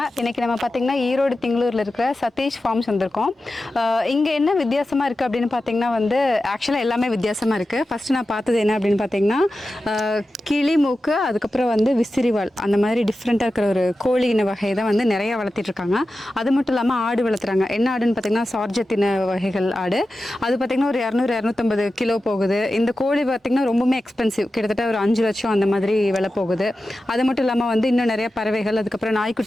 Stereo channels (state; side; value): normal; both; correlation 0.93